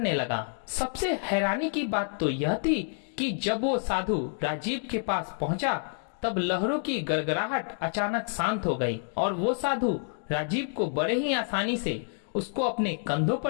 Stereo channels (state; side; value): silent; right; 59 dB below the other